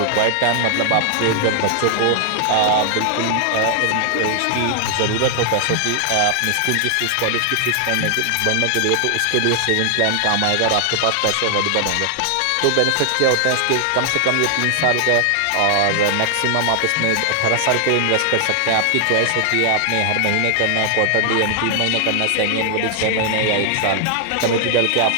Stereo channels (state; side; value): different; both; correlation 0.00